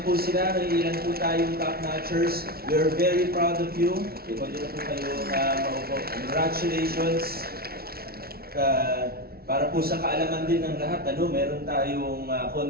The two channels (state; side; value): late; left; 0.44 ms